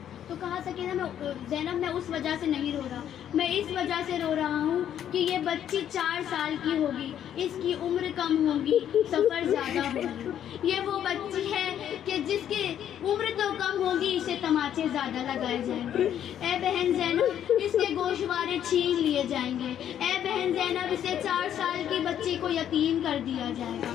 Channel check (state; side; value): quieter; right; 10.1 dB